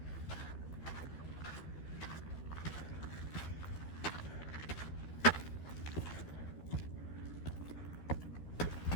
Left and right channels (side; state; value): right; late; 12 ms